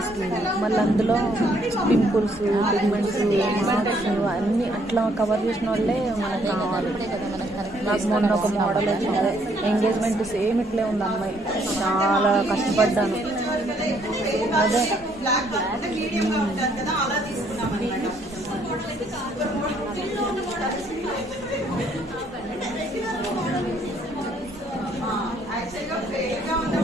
మళ్ళీ అందులో పింపుల్స్ పిగ్మెంట్స్ మార్క్స్ అన్నీ అట్లా కవర్ చేసిన వాళ్ళే మనకు కావాలి. నాకు మొన్న ఒక మోడల్ వచ్చింది, ఎంగేజ్మెంట్ సేమ్ ఇట్లే ఉంది అమ్మాయి. చాలా కష్టపడ్డాను.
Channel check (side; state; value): both; normal; correlation 0.67